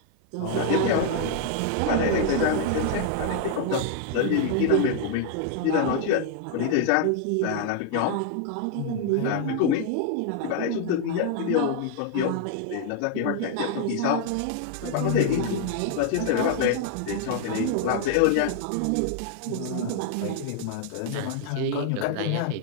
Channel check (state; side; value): different; both; correlation 0.00